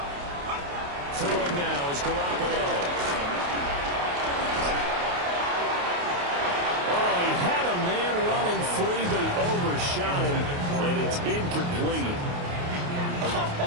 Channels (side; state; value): left; late; 28 ms